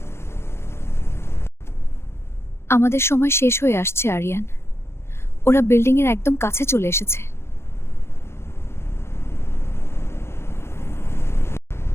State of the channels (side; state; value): right; late; 0.12 ms